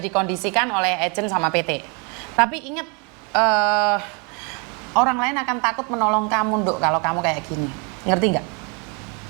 dikondisikan oleh agent sama PT. Tapi ingat, orang lain akan takut menolong kamu, Nduk, kalau kamu kayak gini. Ngerti nggak?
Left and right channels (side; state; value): left; quieter; 33.6 dB